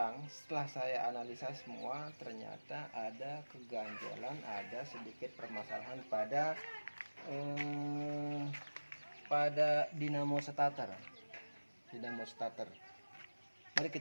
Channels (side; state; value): both; inverted; correlation -1.00